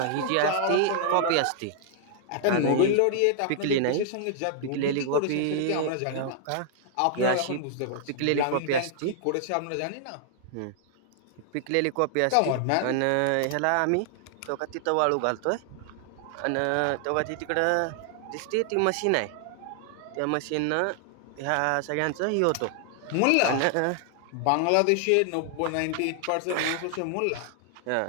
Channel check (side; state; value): both; different; correlation -0.01